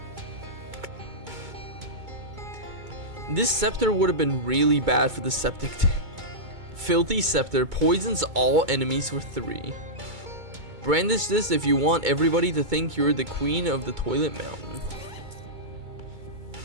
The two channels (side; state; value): left; late; 2.2 ms